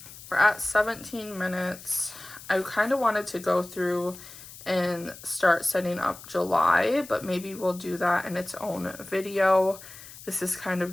we're at 17 minutes. I kind of wanted to go through and start setting up July, but maybe we'll do that in its own video. This is kind of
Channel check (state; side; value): noise; left; hiss, 16 dB below the sound